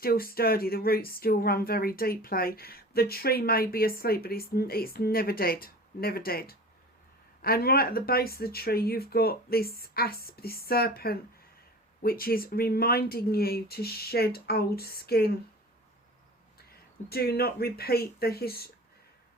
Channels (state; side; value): normal; both; correlation 0.39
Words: sturdy. The roots still run very deeply. The tree may be asleep, but it's never dead, never dead. And right at the base of the tree, you've got this asp, this serpent, which is reminding you to shed old skin. Do not repeat the